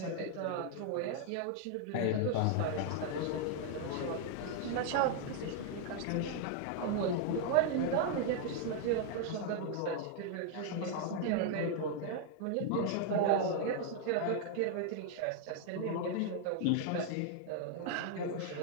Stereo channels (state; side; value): different; both; correlation 0.00